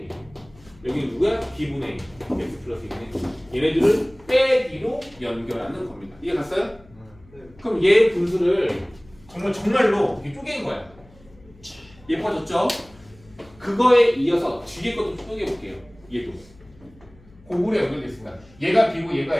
1. 여기는 누구야? B분의 1 X 플러스 1분의 1. 얘네들을 빼기로 연결하는 겁니다. 이해 갔어요? 네. 그럼 얘 분수를 정말로 이렇게 쪼개는 거야. 예뻐졌죠? 그거에 이어서 뒤에 것도 쪼개볼게요. 얘도 고구려 연결됐습니다. 얘가 B고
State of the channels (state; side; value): noise; left; hum, 26 dB below the sound